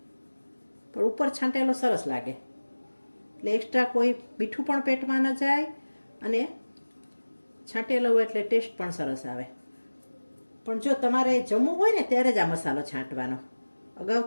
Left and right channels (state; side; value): inverted; both; correlation -1.00